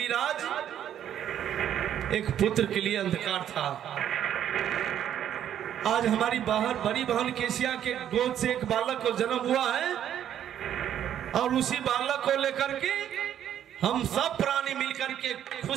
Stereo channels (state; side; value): quieter; left; 10.3 dB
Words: राज एक पुत्र के लिए अंधकार था। आज हमारी बाहर बड़ी बहन केसिया के गोद से एक बालक को जन्म हुआ है और उसी बालक को लेकर के हम सब प्राणी मिलकर के